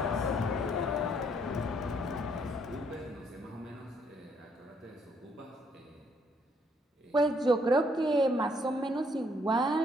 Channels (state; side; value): normal; both; correlation 0.69